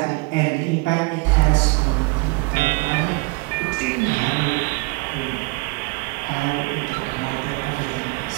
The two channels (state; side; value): quieter; left; 26.4 dB